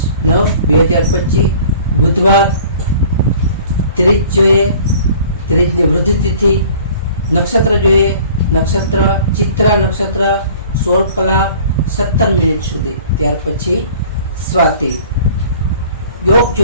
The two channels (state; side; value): inverted; both; correlation -0.49